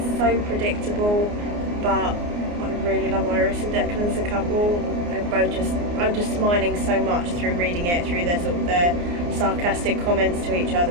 so predictable, but I really love Iris and Declan as a couple. I'm just smiling so much through reading it, through their sarcastic comments to each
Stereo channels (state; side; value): late; left; 29 ms